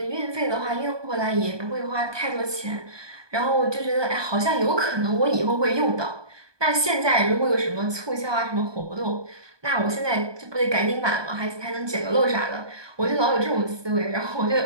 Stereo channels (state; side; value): late; left; 1.2 ms